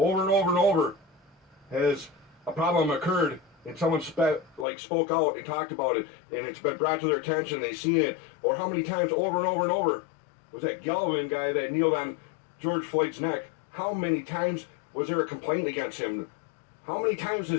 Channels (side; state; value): right; drops out; at 4.7 s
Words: and over and over has a problem occurred and someone spoke out and talked about it and it's been brought to their attention, they've seen it? Or how many times over and over and over was that Galvin guy that kneeled on George Floyd's neck? How many times was there a complaint against him? How many times